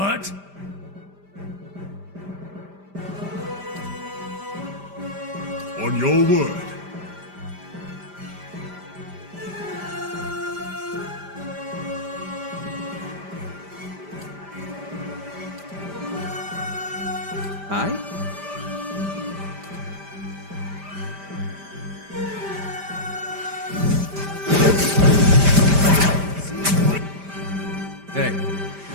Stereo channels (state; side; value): late; left; 5.0 ms